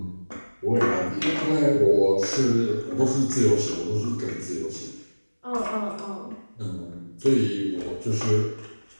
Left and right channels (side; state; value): both; inverted; correlation -1.00